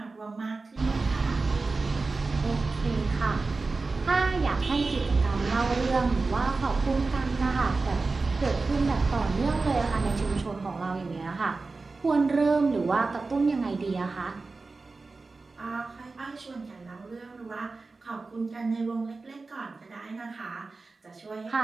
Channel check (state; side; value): quieter; left; 3.8 dB